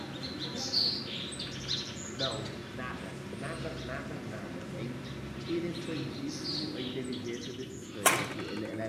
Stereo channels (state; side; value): identical; both; correlation 1.00